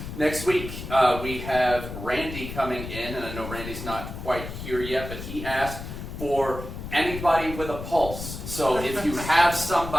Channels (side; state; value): left; noise; rumble, 9 dB below the sound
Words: Next week, we have Randy coming in, and I know Randy's not quite here yet, but he asked for anybody with a pulse. So if you have